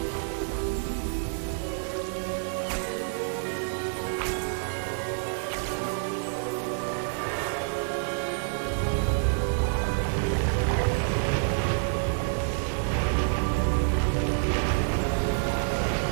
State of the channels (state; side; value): silent; left; digital silence